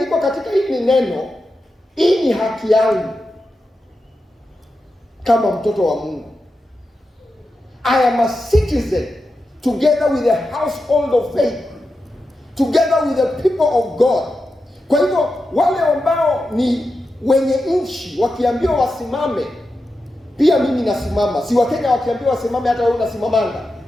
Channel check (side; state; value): both; normal; correlation 0.90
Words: katika hili neno, hii ni haki yangu kama mtoto wa Mungu. I am a citizen together with the household of faith, together with the people of God. Kwa hivyo wale ambao ni wenye nchi wakiambiwa wasimame, pia mimi nasimama. Si Wakenya wakiambiwa wasimame, hata wewe unasimamanga.